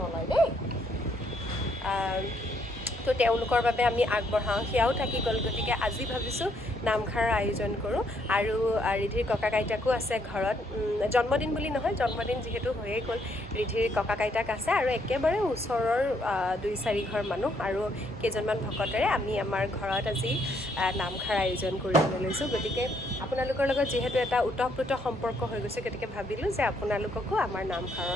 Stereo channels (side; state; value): both; normal; correlation 0.71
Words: নলয় দেই। তো তেওঁলোকৰ বাবে আমি আগবঢ়াওঁ, সেয়াও থাকি গ'ল। গতিকে আজি ভাবিছোঁ নামষাৰৰ আয়োজন কৰোঁ। আৰু ৰিধিৰ ককাক আইতাকো আছে ঘৰত, জন্মদিন বুলি নহয়, জন্মদিন যিহেতু হৈয়ে গ'ল, ৰিধিৰ ককাক আইতাক আছে আৰু একেবাৰে ওচৰৰ 2-4 ঘৰ মানুহ আৰু কেইজনমান ভকতেৰে আমি আমাৰ ঘৰত আজি নামষাৰ আয়োজন কৰিবলৈ লৈছোঁ। গতিকে আপোনালোকৰ লগত যিহেতু এটা ওতঃপ্ৰোত সম্পৰ্ক হৈ গৈছে, গতিকে ভাবিলোঁ যে আপোনালোককো আমাৰ